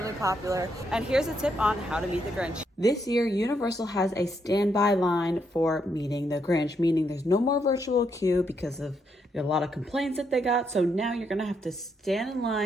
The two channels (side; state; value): both; normal; correlation 0.77